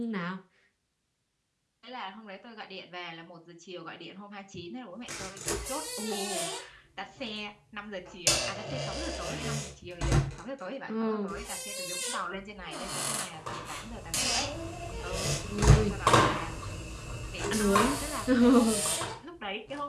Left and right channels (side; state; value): both; identical; correlation 1.00